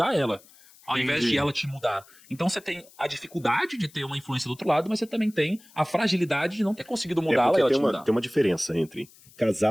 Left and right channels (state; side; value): noise; left; hiss, 25 dB below the sound